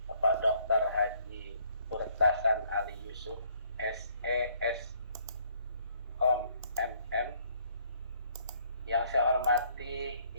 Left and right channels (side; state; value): both; inverted; correlation -0.66